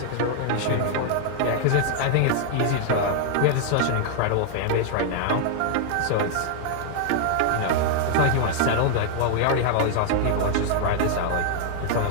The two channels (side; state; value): both; different; correlation 0.00